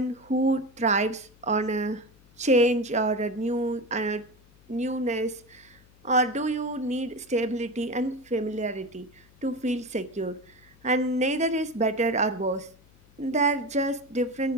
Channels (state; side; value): noise; left; hum, 28 dB below the sound